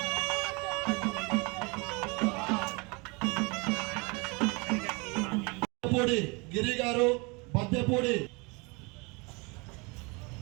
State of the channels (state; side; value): quieter; left; 28.8 dB